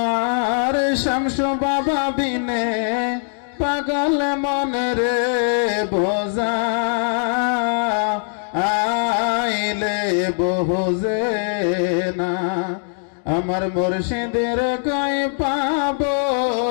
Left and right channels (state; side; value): silent; right; digital silence